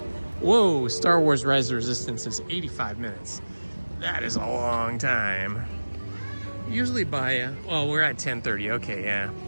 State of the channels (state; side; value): inverted; both; correlation -1.00